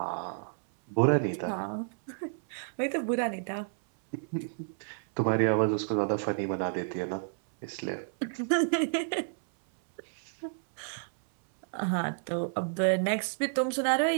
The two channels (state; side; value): silent; left; 58 dB below the other